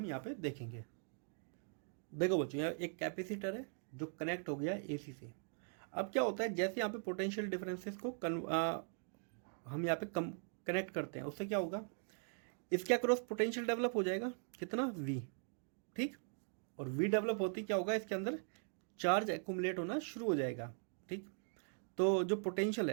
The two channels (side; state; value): left; silent; 51 dB below the other